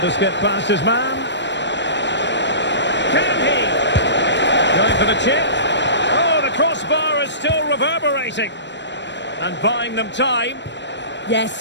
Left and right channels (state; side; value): late; right; 0.52 ms